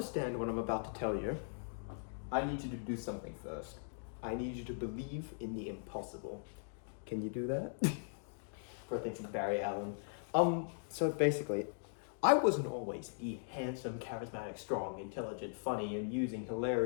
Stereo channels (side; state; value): right; silent; digital silence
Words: what I'm about to tell you, I need you to do something first. I need you to believe in the impossible. Can you do that? For a thing from Barry Allen. So basically, I wasn't always the handsome, charismatic, strong, intelligent, funny, amusing,